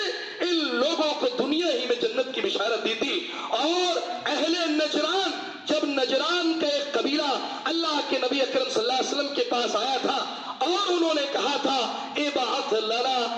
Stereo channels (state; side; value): identical; both; correlation 1.00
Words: ان لوگوں کو دنیا ہی میں جنت کی بشارت دی تھی۔ اور اہل نجران، جب نجران کا ایک قبیلہ اللہ کے نبی اکرم صلی اللہ علیہ وسلم کے پاس آیا تھا اور انہوں نے کہا تھا ابعث لنا